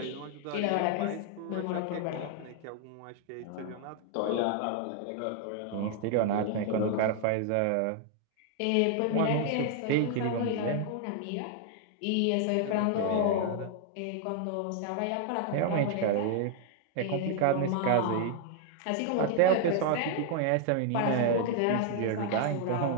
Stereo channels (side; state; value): both; different; correlation 0.00